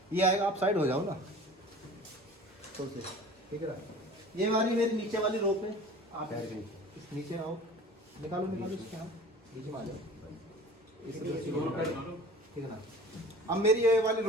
ये आएगा, आप साइड हो जाओ ना तो से, ठीक है ना। ये वाली मेरी नीचे वाली रोप है, आप इस नीचे आओ, निकालो निकालो इसके, हम नीचे में आ जाओ, ठीक है ना। अब मेरी ये वाली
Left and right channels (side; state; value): both; normal; correlation 0.43